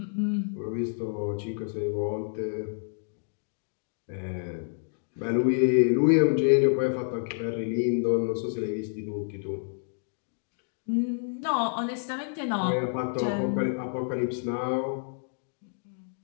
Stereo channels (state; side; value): silent; right; digital silence